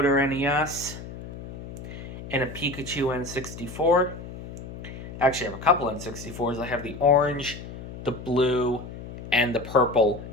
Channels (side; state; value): left; noise; hum, 12 dB below the sound